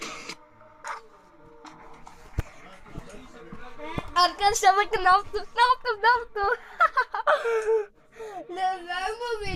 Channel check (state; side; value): identical; both; correlation 1.00